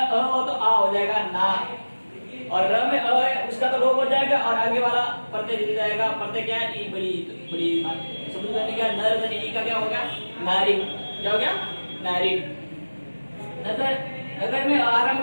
हो तो आ हो जाएगा ना, और र में अ है उसका तो लोप हो जाएगा और आगे वाला प्रत्यय जुड़ जाएगा। प्रत्यय क्या है? ई बड़ी शब्द का क्या? नर धन ई का क्या हो गया? नारी। क्या हो गया? नारी। नगर में आरंभ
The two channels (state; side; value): inverted; both; correlation -1.00